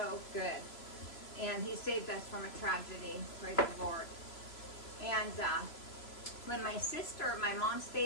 good. And he saved us from a tragedy, praise the Lord. And when my mom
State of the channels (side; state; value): right; late; 3.0 ms